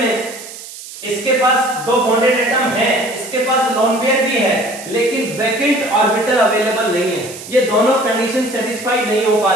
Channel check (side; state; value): right; noise; hiss, 14 dB below the sound